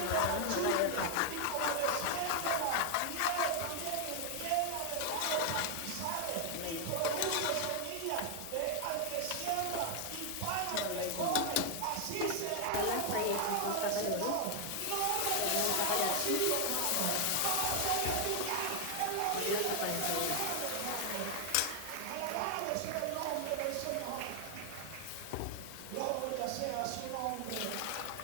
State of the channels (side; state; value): both; different; correlation 0.00